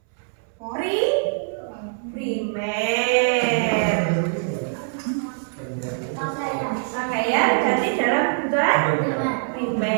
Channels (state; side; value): silent; left; 62 dB below the other